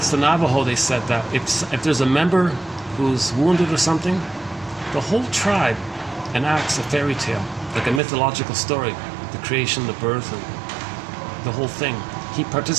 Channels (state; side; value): drops out; left; at 8.0 s